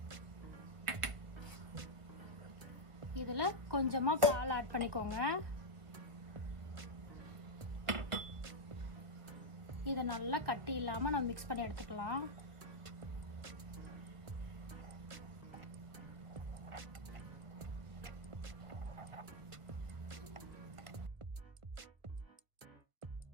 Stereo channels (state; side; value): late; left; 1.4 ms